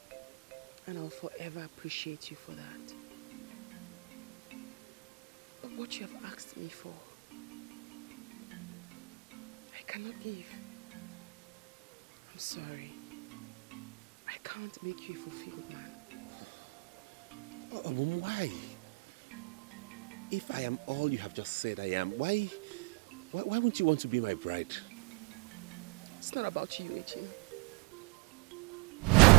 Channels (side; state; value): left; quieter; 28.3 dB